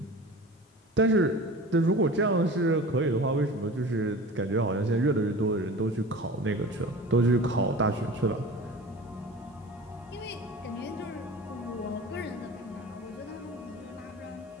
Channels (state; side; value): normal; both; correlation 0.37